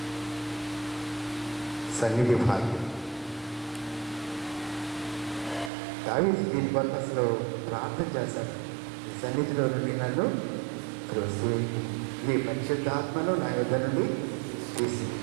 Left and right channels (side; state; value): left; drops out; at 5.7 s